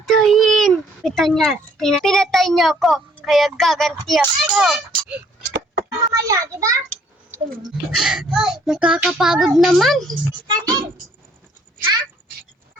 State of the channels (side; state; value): both; normal; correlation 0.62